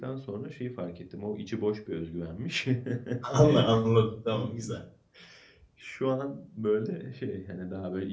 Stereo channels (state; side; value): identical; both; correlation 1.00